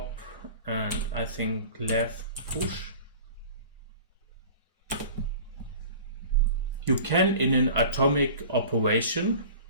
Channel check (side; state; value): both; inverted; correlation -0.41